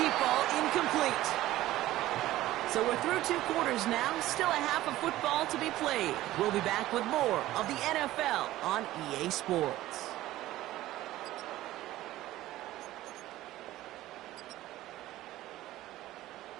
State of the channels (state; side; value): quieter; left; 15.6 dB